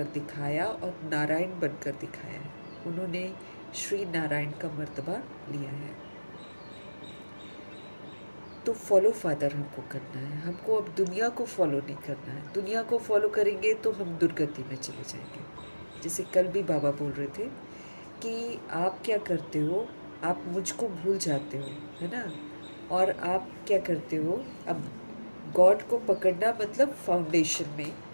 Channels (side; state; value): both; inverted; correlation -1.00